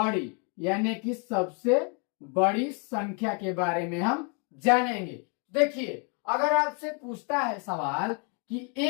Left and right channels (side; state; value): right; quieter; 36.9 dB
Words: यानी कि सबसे बड़ी संख्या के बारे में हम जानेंगे। देखिए अगर आपसे पूछता है सवाल कि